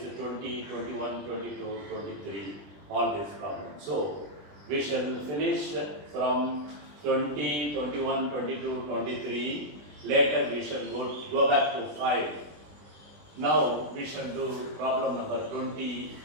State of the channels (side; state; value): left; late; 20 ms